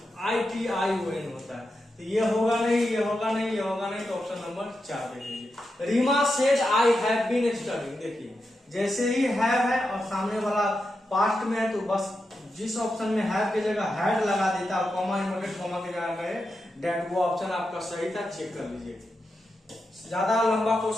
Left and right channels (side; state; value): both; normal; correlation 0.88